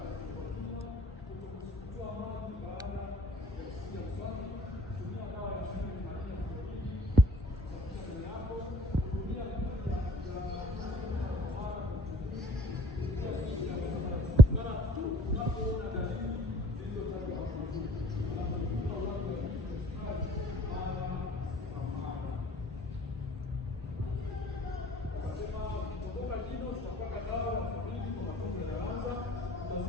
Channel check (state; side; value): normal; both; correlation 0.55